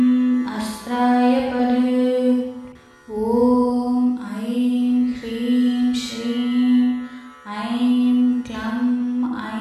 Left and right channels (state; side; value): identical; both; correlation 1.00